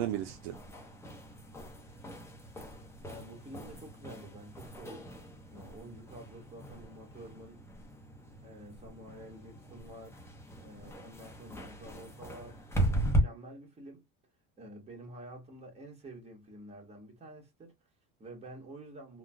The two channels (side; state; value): both; normal; correlation 0.43